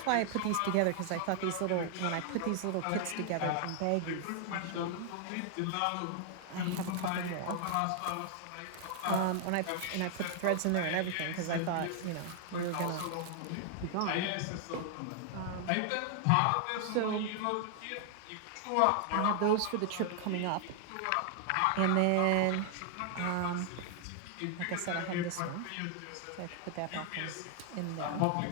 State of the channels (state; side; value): different; both; correlation 0.00